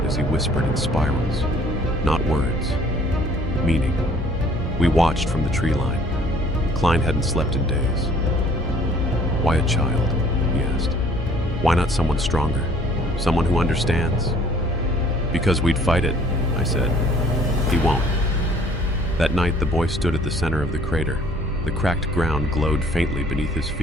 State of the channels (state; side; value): normal; both; correlation 0.57